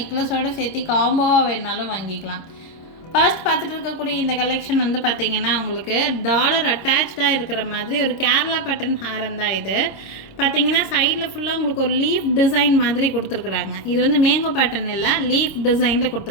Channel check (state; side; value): late; right; 25 ms